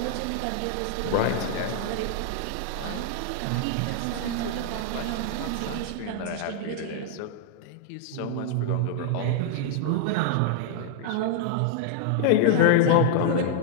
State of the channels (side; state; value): both; different; correlation 0.00